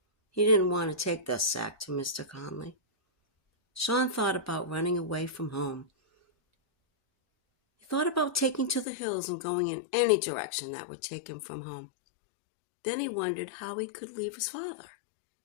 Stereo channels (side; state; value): right; drops out; at 8.8 s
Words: He didn't want to take the sack to Mr. Conley. Sean thought about running away from home. He thought about taking to the hills and going in any direction that would take him from home. Then he wondered how he could leave his father.